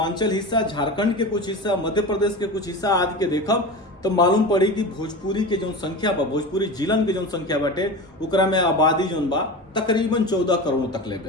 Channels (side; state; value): both; normal; correlation 0.28